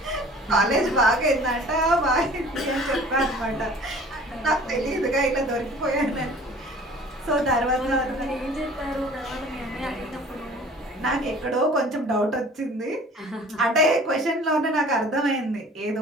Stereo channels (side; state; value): both; normal; correlation 0.47